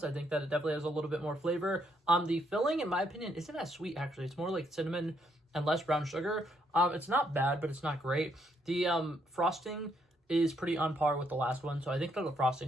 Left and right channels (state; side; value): normal; both; correlation 0.73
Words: I think that it definitely has a little bit more flavor. The filling, in my opinion, isn't as sweet, actually. It's more like cinnamon and less brown sugar. It's not bad, but it's not great. The frosting is pretty on par with the last one, so I think that the